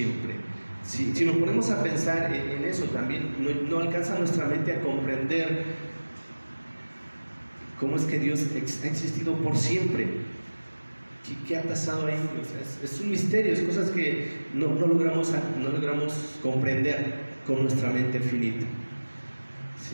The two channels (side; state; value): both; inverted; correlation -1.00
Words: Si nos ponemos a pensar en eso también, no alcanza nuestra mente a comprender cómo es que Dios ha existido por siempre. ¿Qué ha pasado ahí? O sea, es un misterio, es cosas que no logramos comprender con nuestra mente finita.